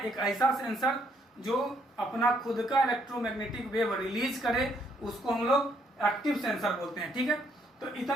एक ऐसा सेंसर जो अपना खुद का इलेक्ट्रोमैग्नेटिक वेव रिलीज करे, उसको हम लोग एक्टिव सेंसर बोलते हैं। ठीक है, तो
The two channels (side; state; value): both; normal; correlation 0.70